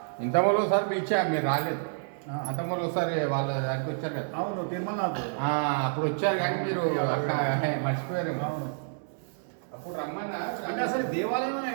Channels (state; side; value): silent; left; digital silence